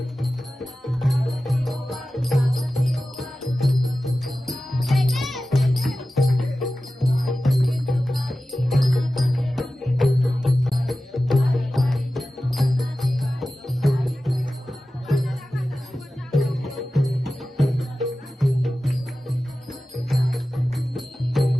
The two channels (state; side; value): normal; both; correlation 0.95